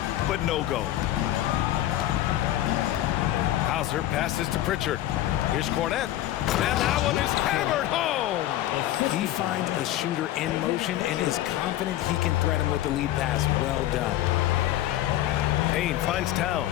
but no go. Hauser passes to Pritchard. Here's Cornette. And that one is hammered home. He finds a shooter in motion and is confident he can threat him with the lead pass. Well done. Payne finds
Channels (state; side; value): quieter; right; 13.8 dB